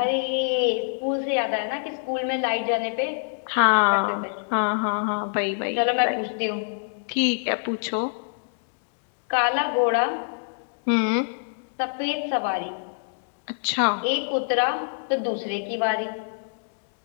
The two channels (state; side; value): silent; right; digital silence